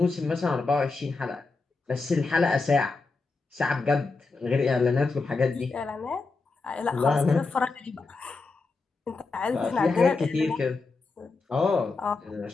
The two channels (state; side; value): quieter; right; 3.9 dB